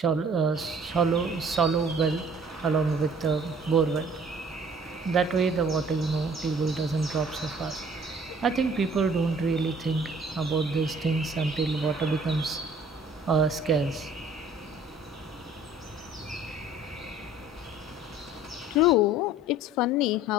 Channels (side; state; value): both; normal; correlation 0.53